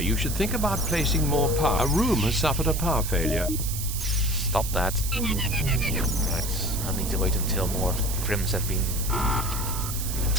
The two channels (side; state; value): right; noise; hiss, 6 dB below the sound